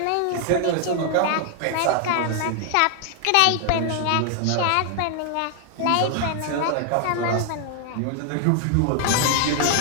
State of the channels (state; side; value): different; both; correlation 0.00